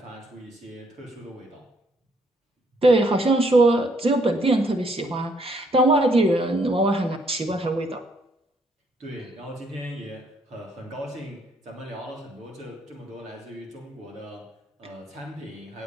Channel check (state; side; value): normal; both; correlation 0.69